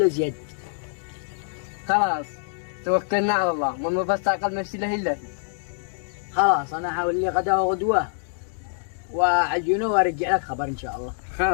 زيادة. خلاص توكلنا على الله، ما بس تعقل نفسي له إلا خلاص أنا حاول لي غدا وغدوة وعجينه وأرجع لك خبر إن شاء الله.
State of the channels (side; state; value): right; silent; digital silence